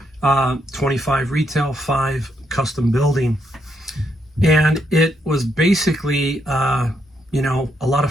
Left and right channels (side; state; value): both; normal; correlation 0.78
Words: 25 retail, 5 custom building. And it was basically, a lot